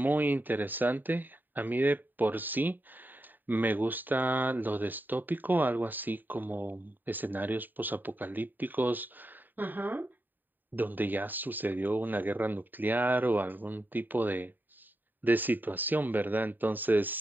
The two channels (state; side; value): late; left; 0.090 ms